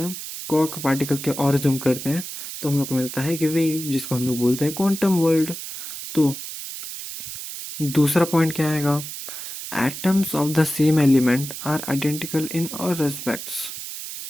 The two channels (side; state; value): right; noise; hiss, 9 dB below the sound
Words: क्वार्क पार्टिकल के और जूम करते हैं तो हम लोग को मिलता है कि वेव, जिसको हम लोग बोलते हैं क्वांटम वर्ल्ड। तो दूसरा पॉइंट क्या आएगा? atoms of the same element are identical in all respects।